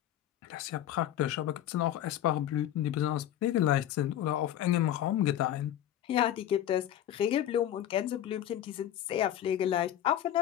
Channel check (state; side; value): quieter; right; 11.7 dB